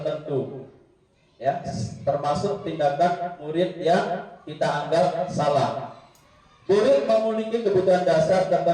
ya, termasuk tindakan murid yang kita anggap salah. Murid memiliki kebutuhan dasar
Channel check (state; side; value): identical; both; correlation 1.00